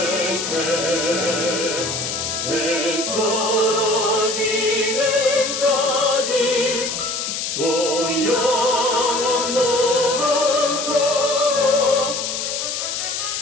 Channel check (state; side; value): noise; left; hiss, 3 dB below the sound